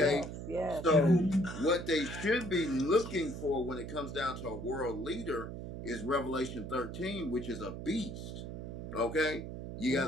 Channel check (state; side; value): noise; right; hum, 8 dB below the sound